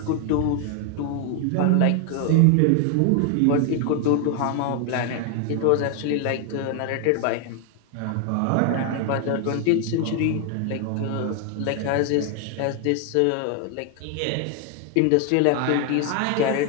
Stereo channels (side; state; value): both; different; correlation 0.01